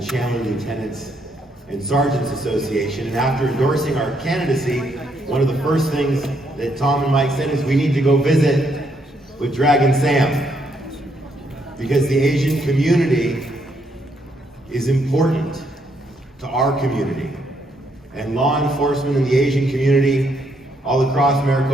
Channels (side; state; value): both; normal; correlation 0.74